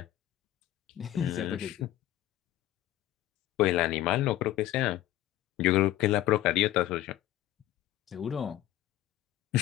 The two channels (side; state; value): right; quieter; 14.1 dB